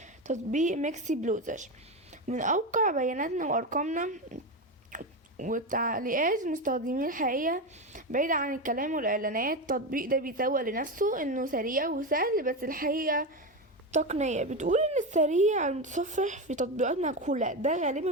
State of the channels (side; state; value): both; normal; correlation 0.16